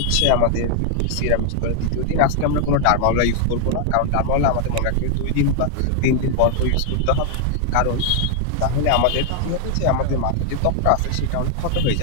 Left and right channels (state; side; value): different; both; correlation 0.00